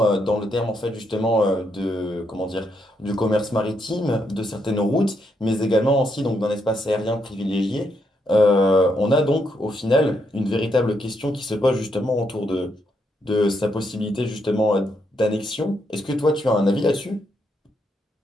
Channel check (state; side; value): normal; both; correlation 0.78